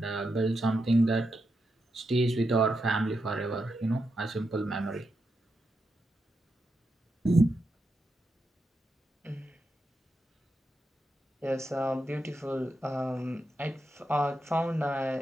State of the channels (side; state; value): both; normal; correlation 0.85